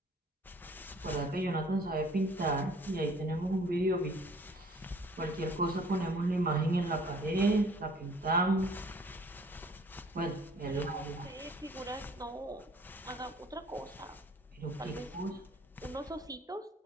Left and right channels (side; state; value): both; normal; correlation 0.54